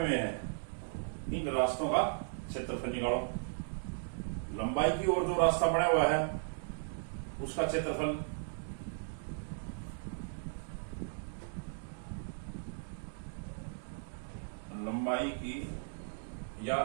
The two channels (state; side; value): silent; left; digital silence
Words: हैं इन रास्तों का क्षेत्रफल निकालो। लंबाई की ओर जो रास्ता बना हुआ है उसका क्षेत्रफल, लंबाई की या